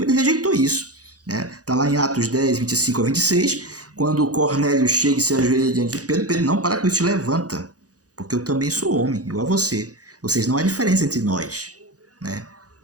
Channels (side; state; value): left; late; 0.67 ms